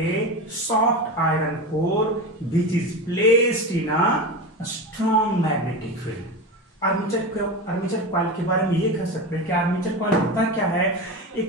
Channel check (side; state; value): both; normal; correlation 0.23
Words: soft iron core which is placed in a strong magnetic field। Armature coil के बारे में ये कह सकते हैं कि आर्मेचर कॉइल होता क्या है,